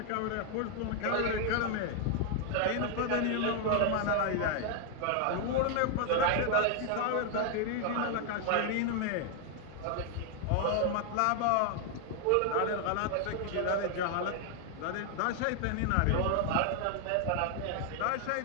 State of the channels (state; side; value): different; both; correlation 0.00